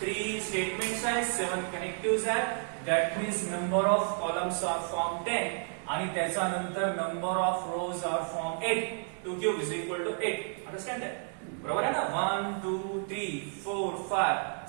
3 स्टेटमेंट्स आहेत, 7 कनेक्टिव्ह आहेत. That means number of columns are form 10 आणि त्याच्यानंतर number of rows are form 8. 2 cube is equal to 8. Understand that? बरोबर आहे ना? 1 2 3 4 5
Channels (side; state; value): left; silent; 57 dB below the other